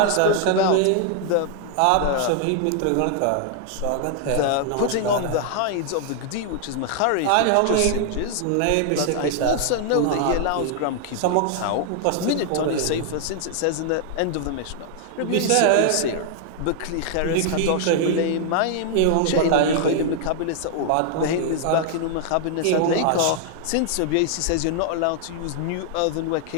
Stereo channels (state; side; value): different; both; correlation 0.00